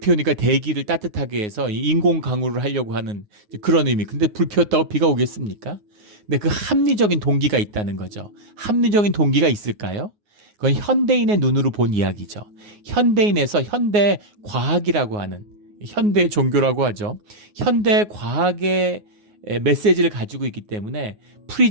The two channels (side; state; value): left; late; 9.5 ms